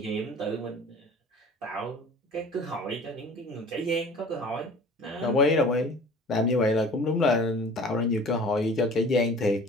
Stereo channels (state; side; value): normal; both; correlation 0.45